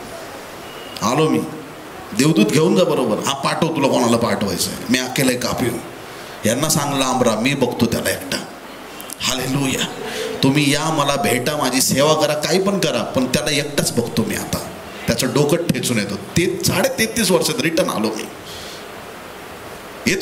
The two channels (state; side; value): identical; both; correlation 1.00